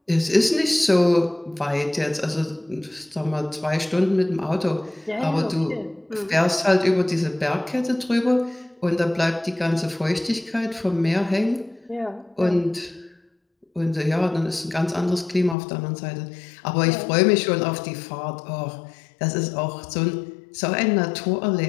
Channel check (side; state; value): right; drops out; at 15.6 s